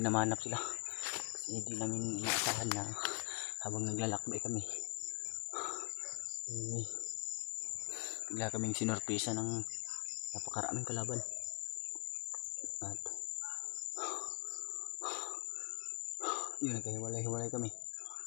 na mahanap sila. Kasi hindi namin inaasahan na habang naglalakbay kami. Bigla kaming sinorpresa ng napakaraming kalaban. At yun, nagkahiwalay-hiwalay kami.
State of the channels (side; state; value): right; quieter; 31.6 dB